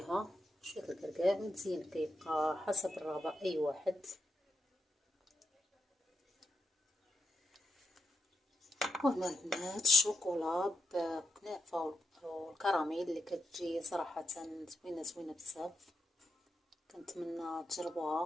شويه الكركاع. والزين كيبقى حسب الرغبه اي واحد. وهنا البنات الشوكولا بكنافه والكراميل اللي كتجي صراحه زوينه بزاف، كنتمنى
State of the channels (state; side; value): normal; both; correlation 0.87